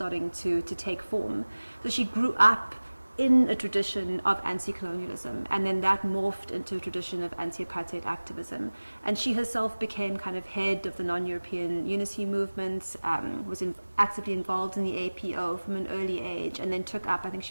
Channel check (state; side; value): inverted; both; correlation -1.00